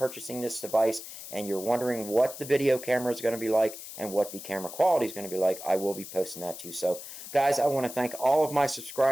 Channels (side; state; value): left; noise; hiss, 12 dB below the sound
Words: this device and you're wondering what the video camera is going to be like and what the camera quality is going to be like, I will be posting that too. So guys, I want to thank all of my